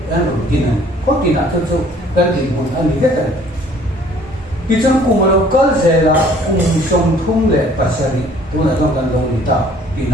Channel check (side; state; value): both; normal; correlation 0.56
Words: kinh ăn có kinh ăn thôi chứ cái gì muốn ăn gì hết rồi khi trong cùng mà lâu cỡ gì là cùng sông thung lệ bát sari tôi là trong căn đông đi ta kinh